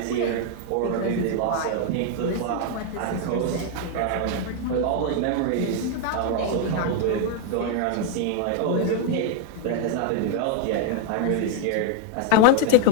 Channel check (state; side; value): different; both; correlation 0.00